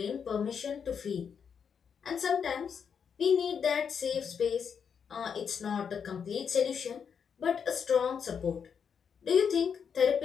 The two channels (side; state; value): right; quieter; 6.9 dB